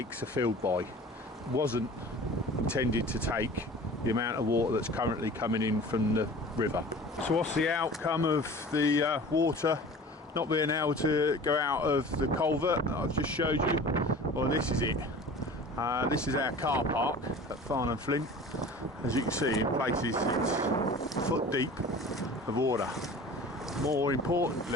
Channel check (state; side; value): normal; both; correlation 0.41